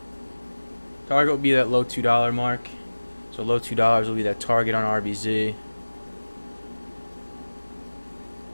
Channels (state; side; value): inverted; both; correlation -1.00